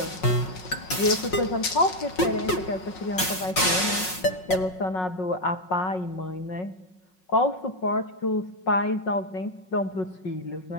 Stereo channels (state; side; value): late; right; 5.5 ms